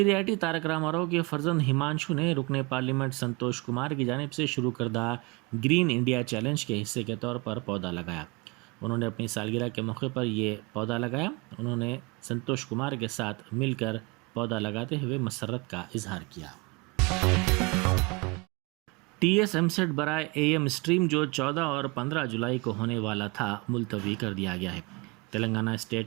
आईटी तारक रामाराव के फर्जंद हिमांशु ने रुकने पार्लियामेंट संतोष कुमार की जानिब से शुरू करदा ग्रीन इंडिया चैलेंज के हिस्से के तौर पर पौधा लगाया। उन्होंने अपनी सालगिरह के मौके पर ये पौधा लगाया। उन्होंने संतोष कुमार के साथ मिलकर पौधा लगाते हुए मसरत का इजहार किया। TS एमसेट बराए AM स्ट्रीम जो 14 और 15 जुलाई को होने वाला था मुलतवी कर दिया गया है। Telangana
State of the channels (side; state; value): left; quieter; 26.9 dB